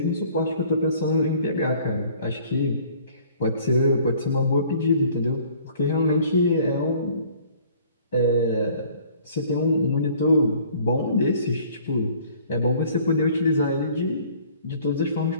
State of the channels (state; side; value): inverted; both; correlation -0.55